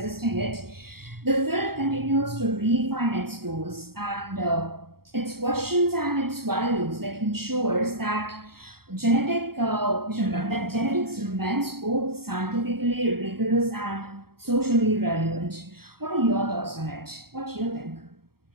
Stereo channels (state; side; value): late; left; 0.95 ms